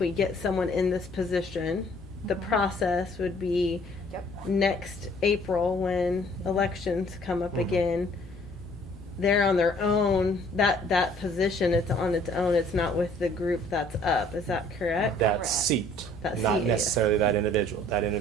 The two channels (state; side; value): normal; both; correlation 0.58